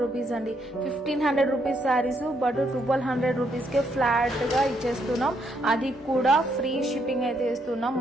రూపీస్ అండి. 1500 rupees saris but 1200 rupees K flat గా ఇచ్చేస్తున్నాం. అది కూడా ఫ్రీ షిప్పింగ్ అయితే ఇస్తున్నాం.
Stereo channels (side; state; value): both; normal; correlation 0.74